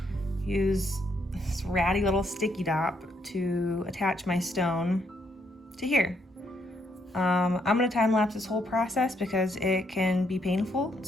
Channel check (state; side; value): normal; both; correlation 0.74